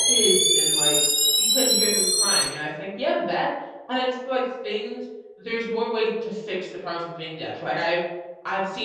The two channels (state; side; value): identical; both; correlation 1.00